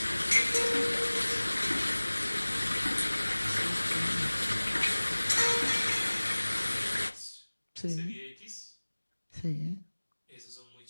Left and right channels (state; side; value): inverted; both; correlation -1.00